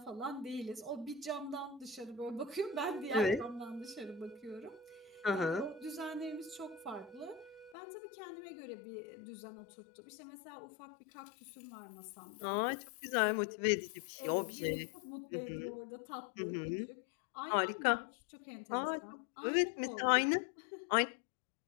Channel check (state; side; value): drops out; right; at 7.8 s